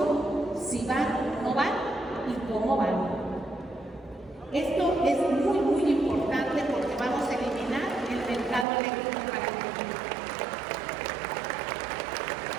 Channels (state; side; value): drops out; left; at 8.7 s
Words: si van, no van y cómo van. Esto es muy, muy importante porque vamos a eliminar el mercado eléctrico para el mundo.